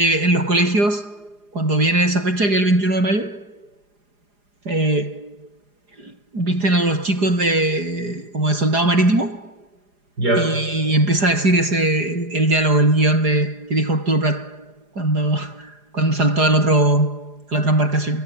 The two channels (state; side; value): late; left; 4.9 ms